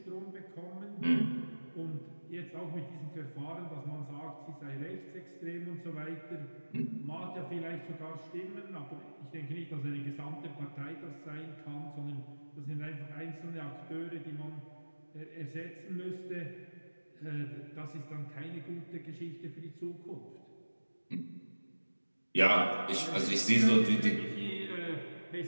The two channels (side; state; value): both; inverted; correlation -1.00